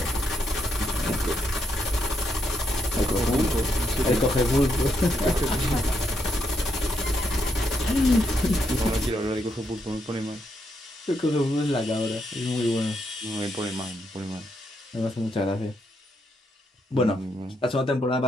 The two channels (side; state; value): both; normal; correlation 0.79